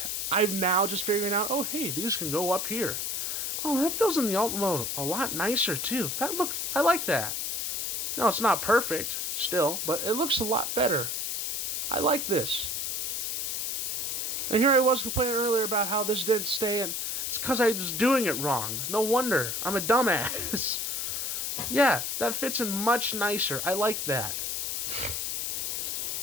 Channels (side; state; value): left; noise; hiss, 1 dB below the sound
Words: I'm now just figuring out, oh, hey, these can go up here. Oh, that feels in the alt mode a lot nicer, too. I like that. No, it's not perfect, still, but it looks a lot better. I like this. And here I was complaining earlier about how this didn't stay in. It's because I was doing it wrong. No wonder. I'm a dumbass. Yeah, that fits in much nicer. I like that.